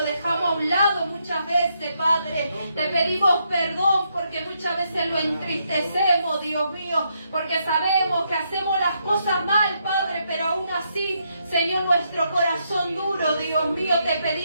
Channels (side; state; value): both; inverted; correlation -0.78